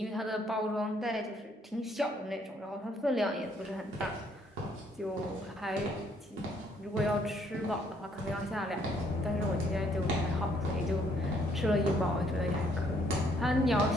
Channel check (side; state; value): both; normal; correlation 0.67